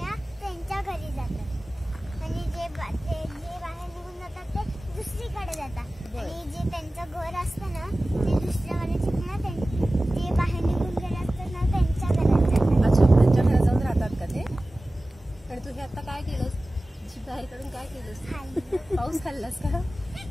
त्यांच्या घरी जातात आणि जे बाहेर निघून जातात ते दुसरीकडे जातात. आणि जे त्यांचं घर असतं ना ते दुसऱ्यावाले चिमण्या जे बाहेर निघून गेले असतात ना त्यांच्या घरात जातात. अच्छा, त्यांच्या घरात जाऊन राहतात का ते? आणि तू हे आता काय केलंस? बाहेर काढून काय केलंस? पाऊस खाल्लास का?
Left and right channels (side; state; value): both; normal; correlation 0.97